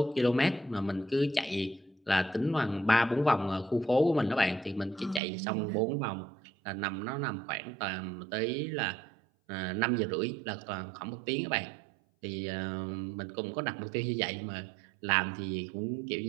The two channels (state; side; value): drops out; left; at 5.2 s